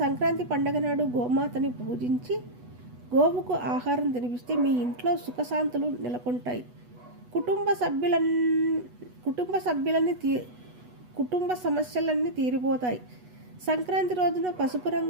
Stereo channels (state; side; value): late; left; 8.2 ms